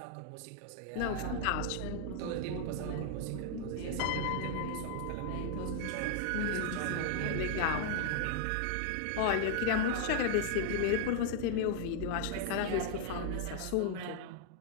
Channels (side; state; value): both; different; correlation 0.00